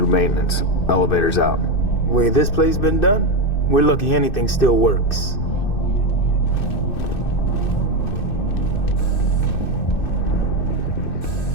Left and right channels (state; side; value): late; right; 2.6 ms